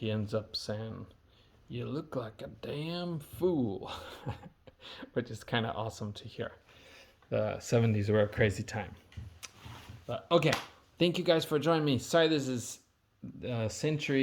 ends up saying, "You look like a damn fool," which is kind of awesome to hear. The 70s were a crazy time. But okay, thank you guys for joining me. Sorry this is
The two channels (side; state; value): both; identical; correlation 1.00